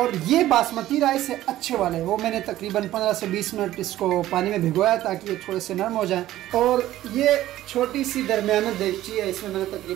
ये बासमती राइस है अच्छे वाले, वो मैंने तकरीबन 15 से 20 मिनट इसको पानी में भिगोया ताकि ये थोड़े से नरम हो जाएं। और ये छोटी सी दरमियाना देगची है, इसमें मैंने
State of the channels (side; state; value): left; quieter; 14.3 dB